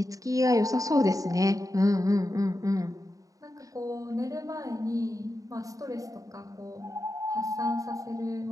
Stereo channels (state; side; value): late; left; 0.16 ms